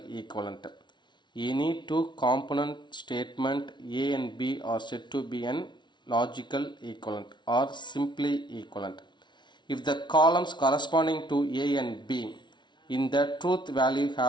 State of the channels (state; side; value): late; right; 0.22 ms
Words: equivalent. Any two component statement A and B are said to be an logical equivalent or simply equivalent. If the columns corresponding to A and B in the truth value